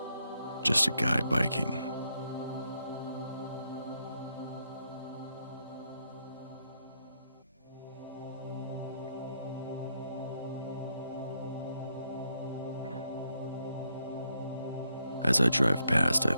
Just a guy biking. As I drive past, I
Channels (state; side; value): inverted; both; correlation -0.78